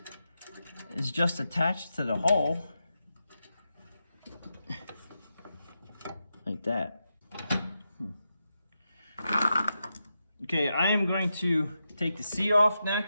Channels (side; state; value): both; inverted; correlation -0.88